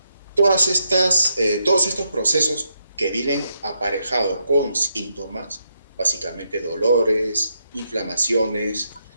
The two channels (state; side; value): inverted; both; correlation -0.80